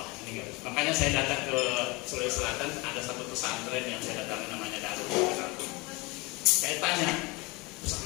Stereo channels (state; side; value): quieter; right; 25.3 dB